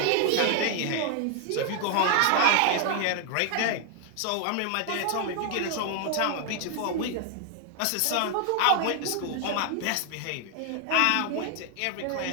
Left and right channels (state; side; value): different; both; correlation 0.00